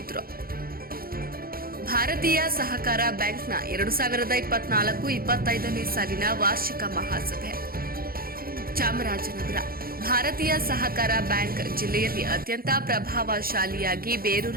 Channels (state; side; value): late; left; 0.43 ms